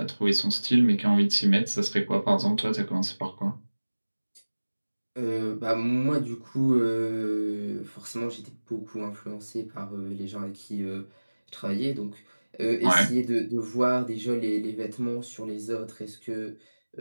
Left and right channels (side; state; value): both; inverted; correlation -1.00